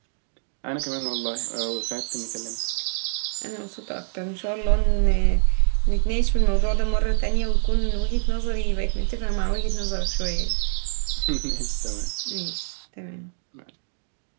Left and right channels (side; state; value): left; silent; digital silence